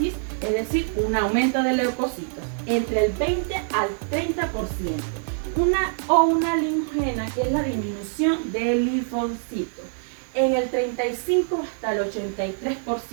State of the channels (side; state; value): left; silent; 62 dB below the other